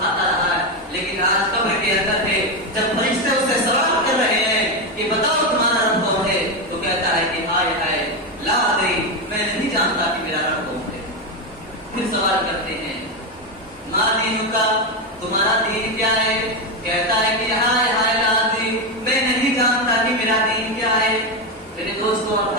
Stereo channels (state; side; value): normal; both; correlation 0.10